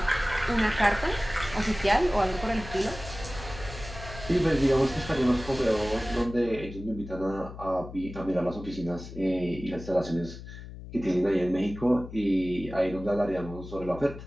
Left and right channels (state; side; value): noise; left; hum, 13 dB below the sound